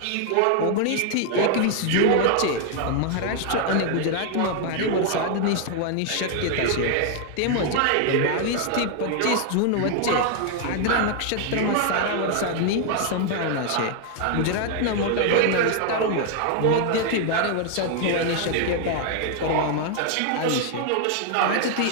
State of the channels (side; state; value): both; different; correlation 0.00